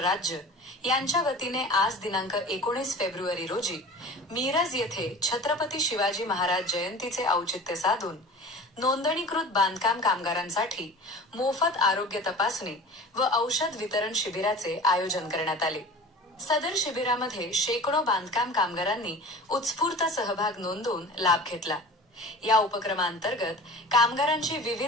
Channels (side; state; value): both; normal; correlation 0.38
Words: यांच्या वतीने आज दिनांक 19 फेब्रुवारी रोजी मिरज येथे छत्रपती शिवाजी महाराज जयंतीचे औचित्य साधून नोंदणीकृत बांधकाम कामगारांसाठी मोफत आरोग्य तपासणी व औषध वितरण शिबिराचे आयोजन करण्यात आले. सदर शिबिरामध्ये शेकडो बांधकाम कामगारांनी उत्स्फूर्त सहभाग नोंदवून लाभ घेतला. या उपक्रमांतर्गत कामगारांची